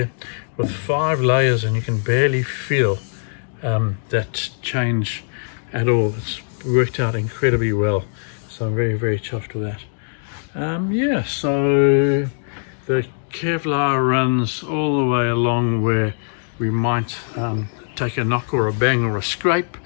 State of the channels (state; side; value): silent; right; digital silence